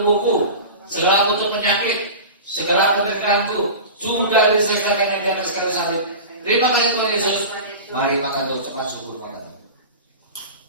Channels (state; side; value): inverted; both; correlation -0.32